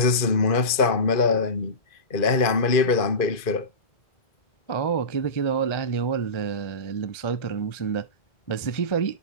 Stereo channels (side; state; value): right; late; 2.4 ms